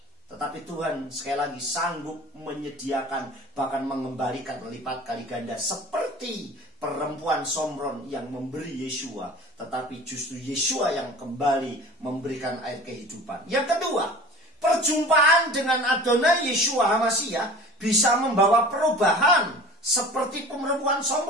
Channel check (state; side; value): normal; both; correlation 0.41